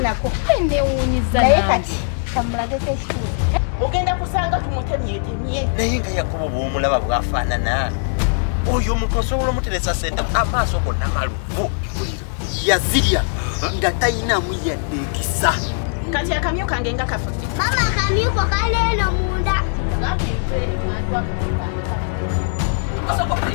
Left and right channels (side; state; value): right; silent; digital silence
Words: Nako ende wunyiza naye kati kamulagete ekituufu ogenda kusanga tumutemyetemye naye nga Yakobo bw'omulaba bwafaanana oyo omuntu osobola omuteresa sente amaaso gonna maluvu yazirya nga tayinamu yadde ekisa kati akamyu kange nga kafudde mama akamyuko kaleeno munda